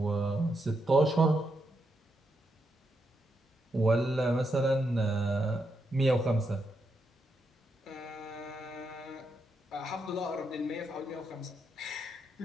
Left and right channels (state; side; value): normal; both; correlation 0.82